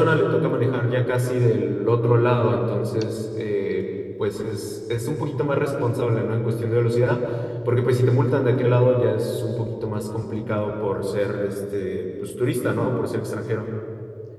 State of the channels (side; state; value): both; identical; correlation 1.00